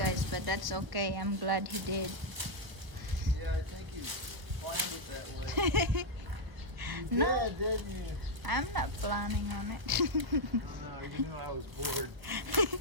but that's okay. I'm glad he did. Yeah, I think you planned it that way. You No, did, didn't you? I'm not planning on it. No, you knew I was bored.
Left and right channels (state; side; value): late; left; 1.2 ms